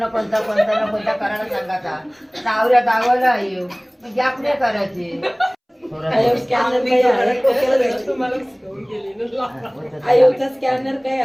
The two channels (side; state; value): both; identical; correlation 1.00